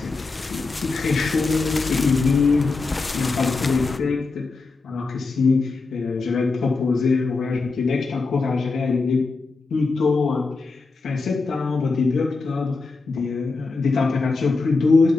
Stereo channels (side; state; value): right; quieter; 3.9 dB